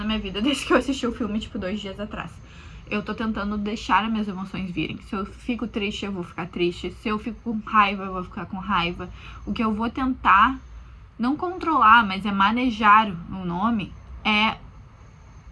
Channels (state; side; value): identical; both; correlation 1.00